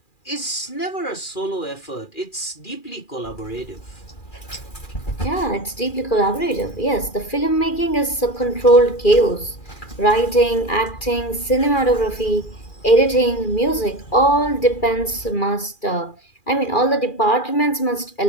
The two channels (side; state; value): right; late; 2.4 ms